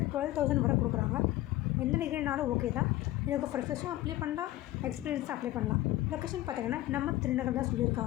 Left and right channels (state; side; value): quieter; right; 15.8 dB